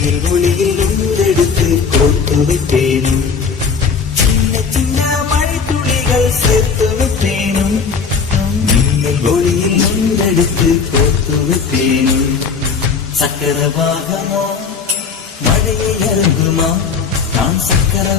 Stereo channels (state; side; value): quieter; right; 5.6 dB